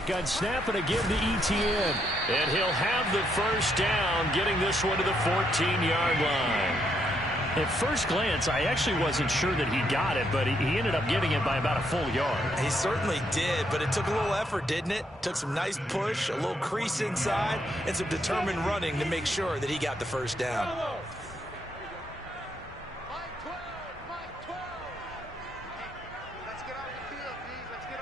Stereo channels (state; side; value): normal; both; correlation 0.75